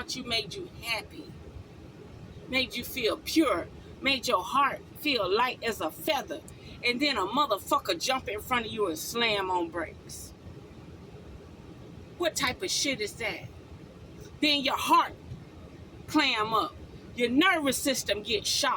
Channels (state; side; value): identical; both; correlation 1.00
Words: you made you happy, made you feel pure, made your heart feel light as a feather. And then a motherfucker jump in front of you and slam on brakes. What type of shit is that? Then your heart clam up. Your nervous system gets